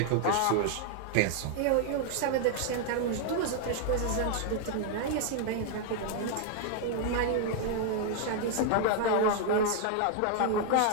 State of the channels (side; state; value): both; different; correlation 0.00